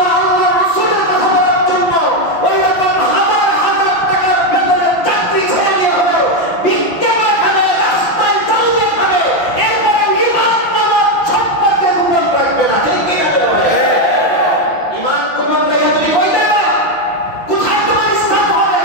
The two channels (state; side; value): late; right; 5.8 ms